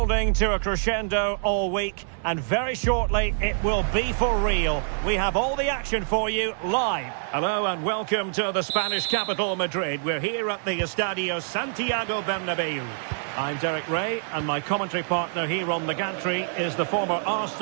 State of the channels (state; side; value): silent; left; 61 dB below the other